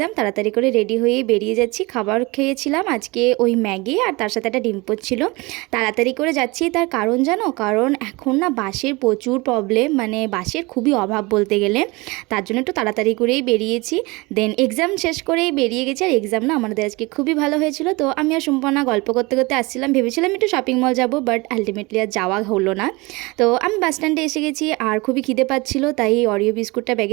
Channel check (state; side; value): quieter; left; 24.4 dB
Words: তাড়াতাড়ি করে রেডি হয়ে বেরিয়ে যাচ্ছি। খাবার খেয়েছিলাম আজকে ওই ম্যাগি, আর তার সাথে একটা ডিম পোচ ছিল। তাড়াতাড়ি করে যাচ্ছি, তার কারণ জানো? কারণ এখন না বাসের প্রচুর প্রবলেম, মানে বাসের খুবই অভাব বলতে গেলে। তার জন্য একটু তাড়াতাড়ি করেই বেরিয়েছি। দেন এক্সাম শেষ করেই বেরিয়ে গেছি। আর এক্সাম না আমাদের আজকে খুবই ভালো হয়েছিল। তো আমি আর সম্পূর্ণ গল্প করতে করতে আসছিলাম, ভেবেছিলাম একটু শপিং মল যাবো, বাট আলটিমেটলি আর যাওয়া হলো না। তো আমি বাস স্ট্যান্ডে এসে গেছি, আর খুবই খিদে পাচ্ছিলো, তাই অরিও বিস্কুটটা